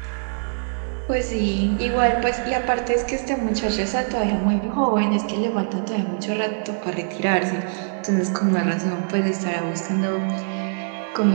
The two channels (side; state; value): left; silent; 63 dB below the other